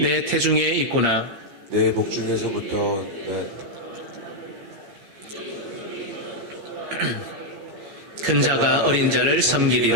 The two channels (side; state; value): left; late; 15 ms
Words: 태중에 있구나. 내 복중에서부터 큰 자가 어린 자를